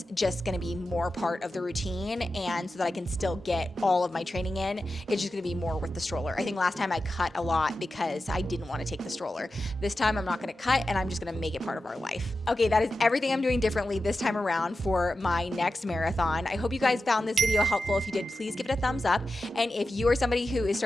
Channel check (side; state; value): both; normal; correlation 0.92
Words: just going to be more part of the routine, and so that I can still get all of my training in, it's just going to be more with the stroller. I think last time I cut a lot because I didn't want to take the stroller. This time I'm not going to cut, and I'm just going to make it part of our life. Okay, that is everything I'm doing differently this time around for my next marathon. I hope you guys found this video helpful. If you did, please give it a thumbs up. And if you are somebody who is